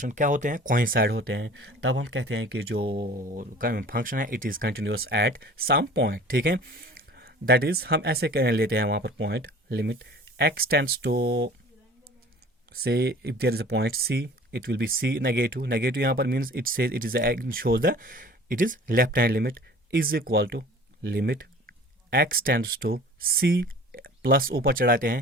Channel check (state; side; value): normal; both; correlation 0.45